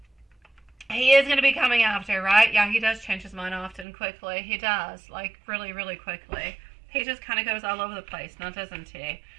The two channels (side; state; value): left; drops out; at 3.9 s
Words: he is going to be coming after, right? Yeah, he does change his mind often, quickly. He does, like, really, really quickly. He just kind of goes all over the place, now doesn't he?